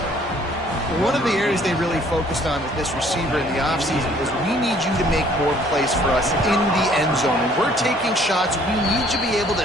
One of the areas they really focused on with this receiver in the offseason was we need you to make more plays for us in the end zone. When we're taking shots, we need you to be able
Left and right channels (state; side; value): normal; both; correlation 0.59